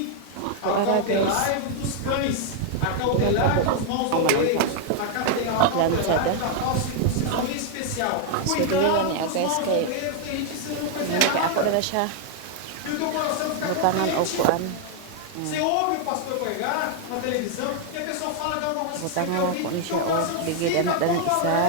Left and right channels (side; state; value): both; different; correlation 0.00